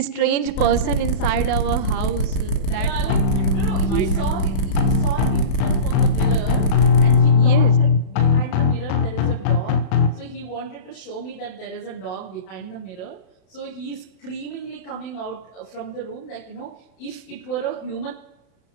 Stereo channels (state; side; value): late; right; 34 ms